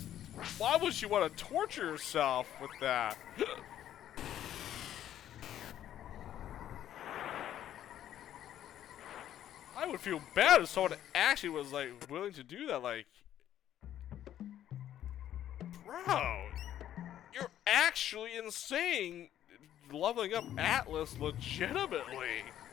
to torture yourself with that? I would feel bad if someone actually was like willing to do that, like, bro, you're actually insane leveling up Atlas legitimately.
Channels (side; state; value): right; quieter; 11.4 dB